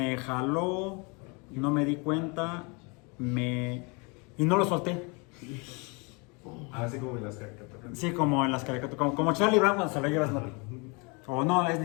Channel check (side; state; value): right; quieter; 30.8 dB